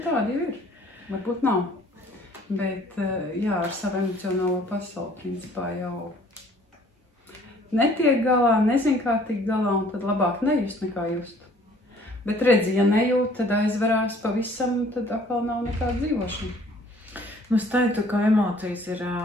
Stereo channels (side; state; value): both; normal; correlation 0.56